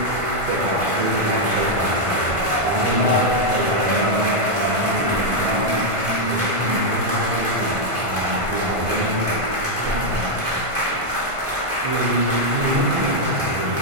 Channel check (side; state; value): left; late; 1.5 ms